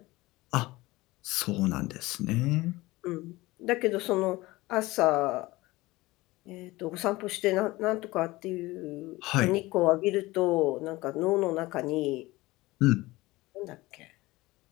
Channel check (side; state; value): right; quieter; 20.0 dB